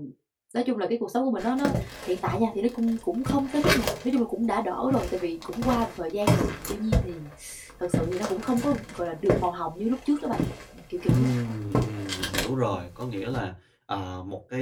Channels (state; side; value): identical; both; correlation 1.00